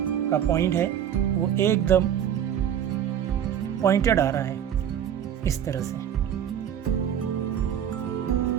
का पॉइंट है वो एकदम पॉइंटेड आ रहा है, इस तरह से।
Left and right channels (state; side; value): quieter; left; 9.6 dB